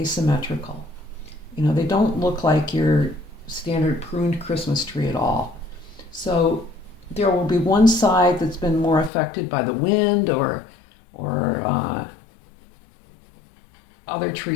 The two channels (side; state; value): right; drops out; at 9.1 s